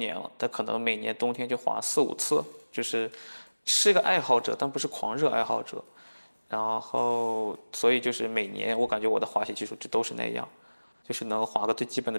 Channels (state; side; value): inverted; both; correlation -1.00